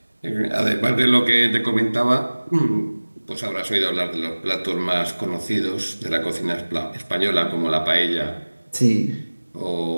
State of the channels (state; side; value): inverted; both; correlation -1.00